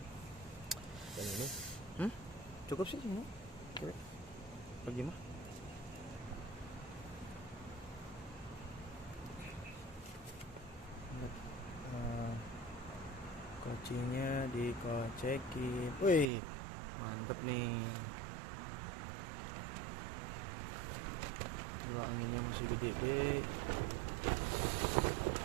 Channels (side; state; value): left; drops out; at 16.3 s